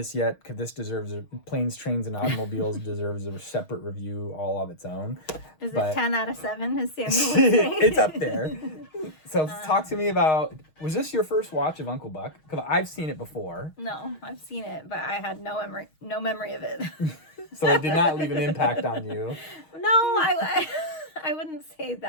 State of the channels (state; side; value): late; right; 6.4 ms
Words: yet because this deserves Planes, Trains, and Automobiles deserves a separate review all of its own. Is But it 10 out of 7, as Samuel would say? it's up there. So talk to me about, was this your first watch of Uncle Buck? Because I've seen it before. No, I've seen it, but I had no memory of it. So it did not leave an impact on you. No, I wouldn't say